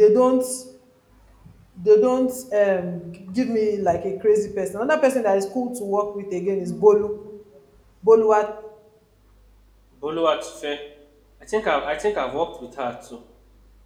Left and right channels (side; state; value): both; identical; correlation 1.00